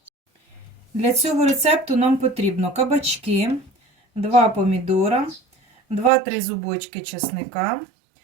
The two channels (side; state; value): left; drops out; at 6.1 s